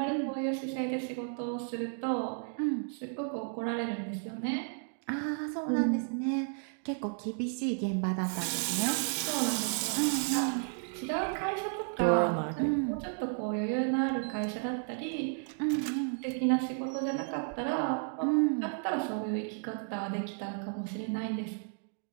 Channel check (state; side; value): silent; left; 56 dB below the other